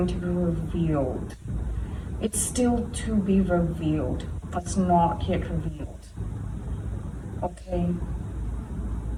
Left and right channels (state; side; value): identical; both; correlation 1.00